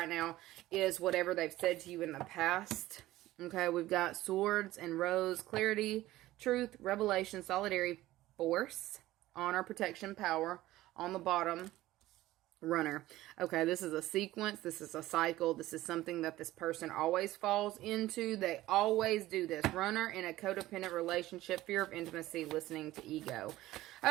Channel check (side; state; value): left; quieter; 16.3 dB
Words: now is whatever they've said to you in the past. Okay, we've got swords and rose, clarity, truth, revelation, solidarity, force, honor, protection, power. On the bottom, runner. Okay, this is a sequence. This is a cycle. This is something that this person always falls into. They always do this. Runner in a codependent relationship, fear of intimacy, listening to ego.